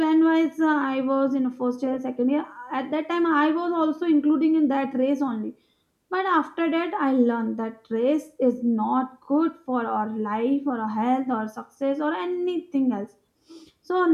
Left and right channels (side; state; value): both; identical; correlation 1.00